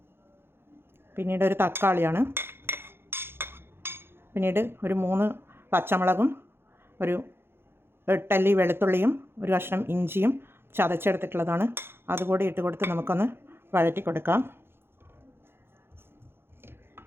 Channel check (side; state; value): left; late; 0.11 ms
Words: പിന്നീട് ഒരു തക്കാളിയാണ്. പിന്നീട് ഒരു 3 പച്ചമുളകും ഒരു 8 അല്ലി വെളുത്തുള്ളിയും ഒരു കഷ്ണം ഇഞ്ചിയും ചതച്ചെടുത്തിട്ടുള്ളതാണ്. അതുകൂടി ഇട്ട് കൊടുത്ത് നമുക്കൊന്ന് വഴറ്റി കൊടുക്കാം.